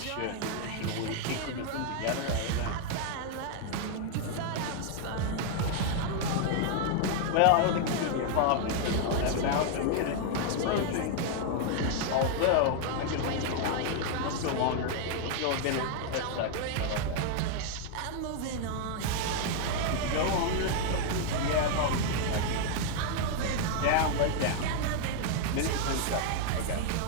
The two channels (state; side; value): different; both; correlation 0.00